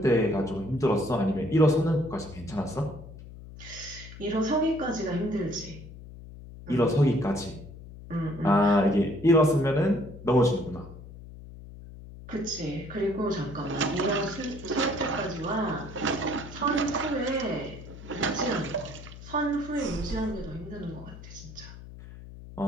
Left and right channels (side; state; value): left; noise; hum, 15 dB below the sound